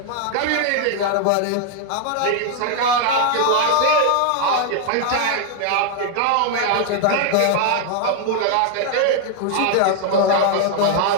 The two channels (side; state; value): both; different; correlation 0.00